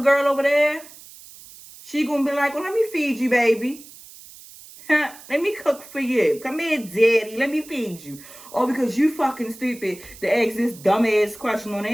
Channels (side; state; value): right; noise; hiss, 19 dB below the sound